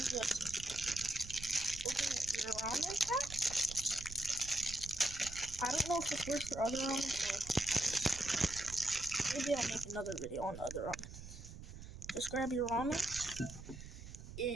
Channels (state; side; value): noise; right; rumble, 12 dB below the sound